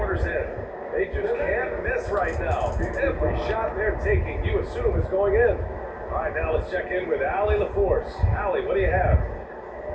end. They just can't miss right now. Every shot they're taking, you assume is going in. All right, now let's check in with Allie LaForce. Allie, what do you have?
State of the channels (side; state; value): both; identical; correlation 1.00